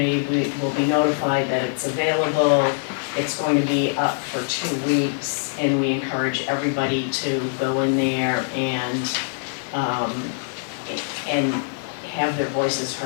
will be notified that it's available. It's going to be up for 2 weeks, and we encourage everybody to go in there and have their voices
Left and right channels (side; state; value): right; silent; 61 dB below the other